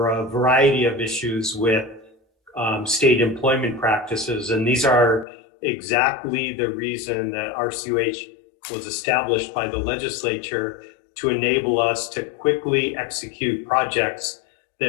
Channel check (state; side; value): drops out; right; at 5.2 s